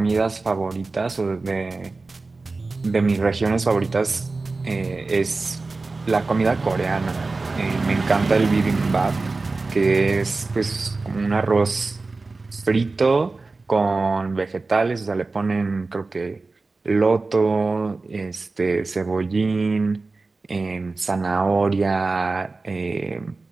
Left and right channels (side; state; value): left; quieter; 3.7 dB